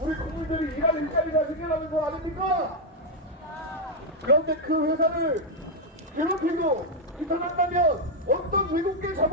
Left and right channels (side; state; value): both; normal; correlation 0.00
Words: 국민들이 일할 일자리가 생겨나는 거 아닙니까? 그런데 그 회사를 괴롭히고 비판한다면 어떤 외국계